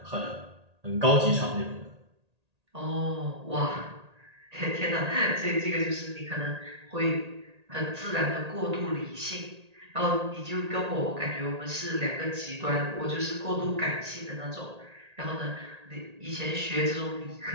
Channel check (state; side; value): late; left; 1.8 ms